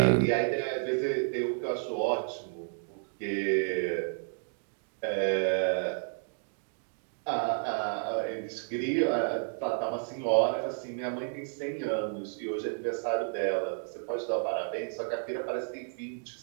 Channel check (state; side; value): silent; left; digital silence